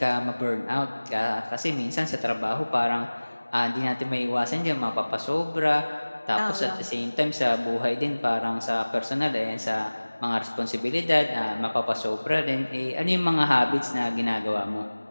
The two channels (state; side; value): inverted; both; correlation -1.00